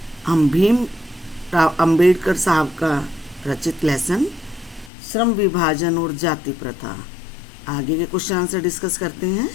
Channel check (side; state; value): right; drops out; at 4.9 s